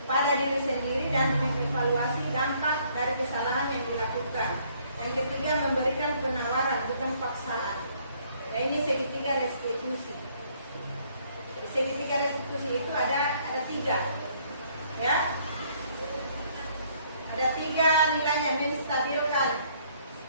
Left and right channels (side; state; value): both; inverted; correlation -0.64